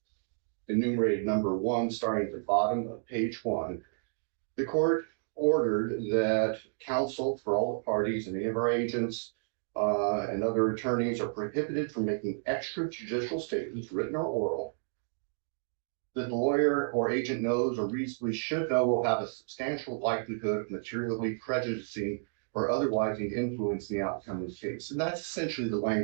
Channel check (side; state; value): left; silent; digital silence